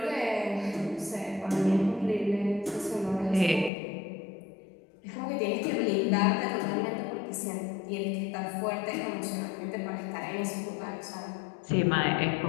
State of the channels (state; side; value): drops out; right; at 3.7 s